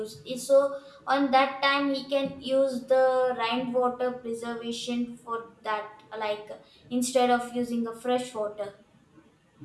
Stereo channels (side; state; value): both; identical; correlation 1.00